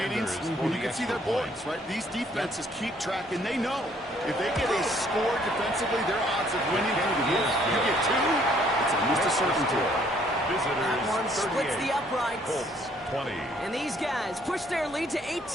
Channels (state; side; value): normal; both; correlation 0.63